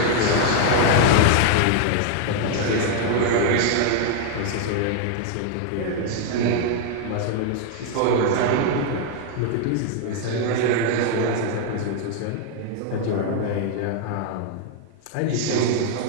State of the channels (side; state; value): both; different; correlation 0.00